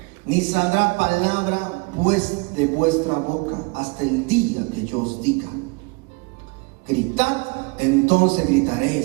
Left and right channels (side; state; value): left; quieter; 29.5 dB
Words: ni saldrá palabra pues de vuestra boca hasta el día que yo os diga: gritad, entonces